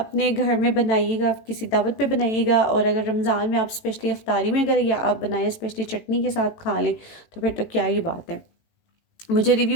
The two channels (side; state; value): right; late; 18 ms